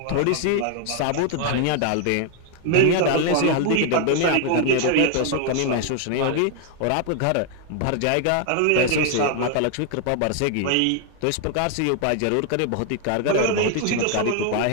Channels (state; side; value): different; both; correlation 0.00